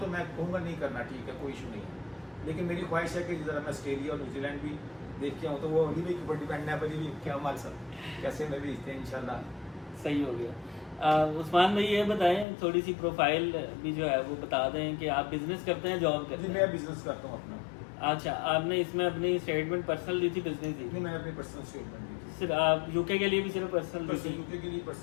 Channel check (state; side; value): drops out; right; at 12.5 s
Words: मैं कहूँगा नहीं करना, ठीक है कोई इशू नहीं है। लेकिन मेरी ख्वाहिश है कि ज़रा मैं ऑस्ट्रेलिया और न्यूजीलैंड भी देख के आऊँ, तो वो अली भाई के ऊपर डिपेंड है, अली भाई क्या हमारे साथ कैसे मैं भेजते हैं इंशाल्लाह। सही हो गया। उस्मान भाई ये बताएं, थोड़ी सी प्रोफाइल भी जो है वो बता दें कि आप बिजनेस करते हैं, जॉब करते हैं? मैं बिजनेस करता हूँ अपना। अच्छा, आपने इसमें अपनी स्टेटमेंट पर्सनल दी थी, बिजनेस दी? नहीं, मैंने अपनी पर्सनल स्टेटमेंट दी थी। सिर्फ आप यूके के लिए भी सिर्फ पर्सनल दी थी? यूके के लिए